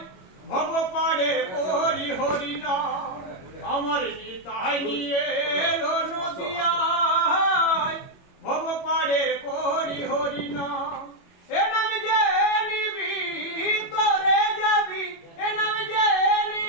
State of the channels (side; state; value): right; late; 21 ms